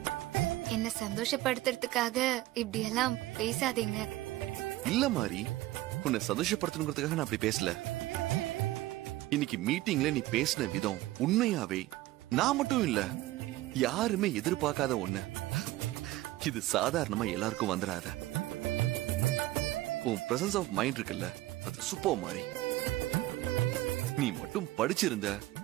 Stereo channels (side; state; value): left; quieter; 17.0 dB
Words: என்ன சந்தோஷப்படுத்துறதுக்காக இப்படி எல்லாம் பேசாதீங்க. இல்ல மாறி, உன்னை சந்தோஷப்படுத்தணுங்கிறதுக்காக நான் அப்படி பேசல. இன்னைக்கு மீட்டிங்ல நீ பேசின விதம் உண்மையாவே நான் மட்டும் இல்ல, யாருமே எதிர்பார்க்காத ஒண்ணு. இது சாதாரணமா எல்லாருக்கும் வந்துடாத. உன் பிரசன்ஸ் ஆஃப் மைண்ட் இருக்குல்ல, அது சூப்பர் மாறி. நீ மட்டும் படிச்சிருந்த